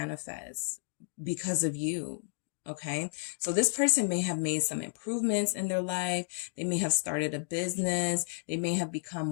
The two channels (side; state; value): right; silent; digital silence